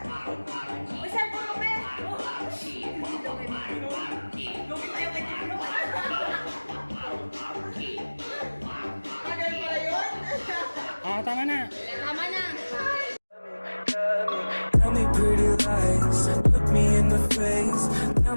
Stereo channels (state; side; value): inverted; both; correlation -1.00